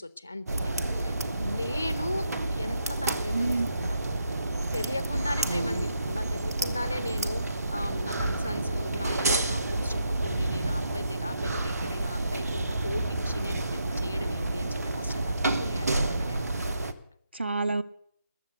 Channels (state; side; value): inverted; both; correlation -0.80